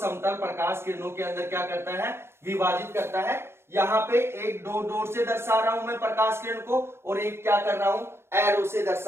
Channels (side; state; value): left; late; 0.12 ms